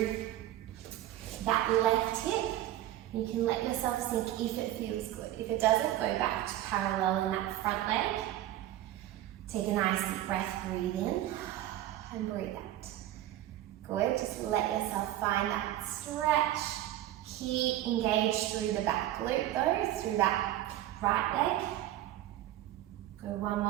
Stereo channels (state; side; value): quieter; left; 13.7 dB